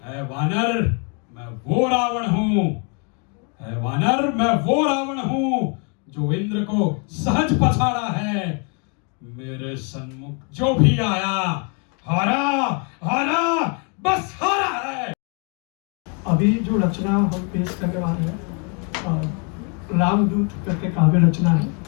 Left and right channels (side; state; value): right; quieter; 37.2 dB